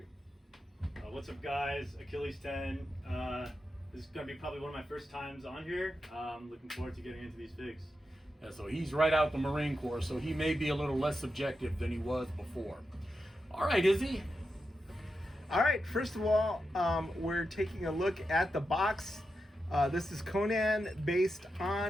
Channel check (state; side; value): normal; both; correlation 0.88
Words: What's up, guys? Achilles 10. This is going to be probably one of my first times on here. Looking forward to getting into these figs. Yeah, so he's right out the Marine Corps, so he may be a little less subjective than he was before. All right, Izzy. All right, first of all, we're taking a look at the box. This is Conan based